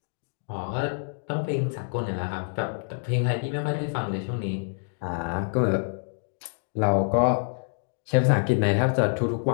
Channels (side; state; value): right; silent; digital silence